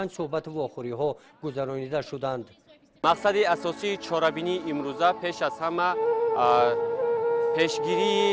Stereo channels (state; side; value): identical; both; correlation 1.00